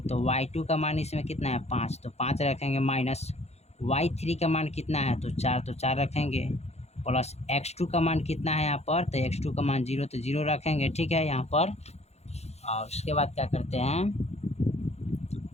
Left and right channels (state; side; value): late; right; 0.31 ms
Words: तो y2 का मान इसमें कितना है 5, तो 5 रखेंगे, माइनस y3 का मान कितना है तो 4 रखेंगे, प्लस x2 का मान कितना है यहाँ पर तो x2 का मान 0 तो 0 रखेंगे। ठीक है, यहाँ पर और उसके बाद क्या करते हैं